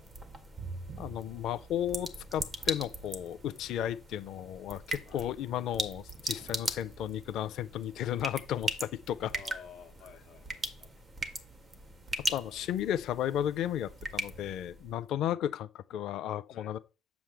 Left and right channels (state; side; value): quieter; right; 5.6 dB